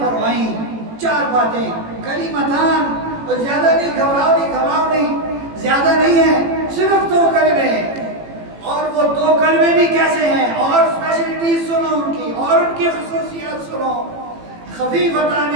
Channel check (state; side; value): late; left; 18 ms